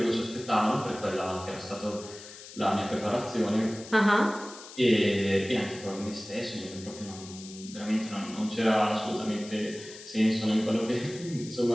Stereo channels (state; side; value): noise; left; hiss, 16 dB below the sound